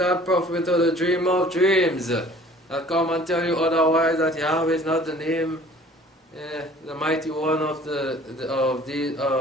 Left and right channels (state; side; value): normal; both; correlation 0.50